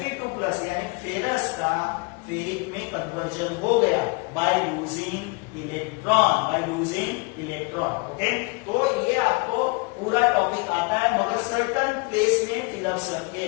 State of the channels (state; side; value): quieter; right; 28.8 dB